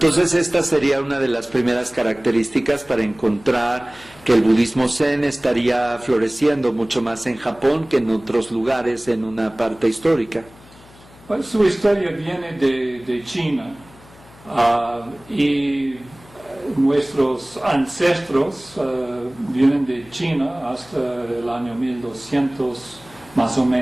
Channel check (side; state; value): left; noise; hum, 24 dB below the sound